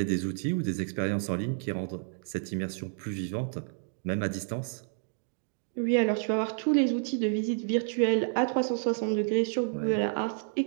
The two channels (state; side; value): silent; left; digital silence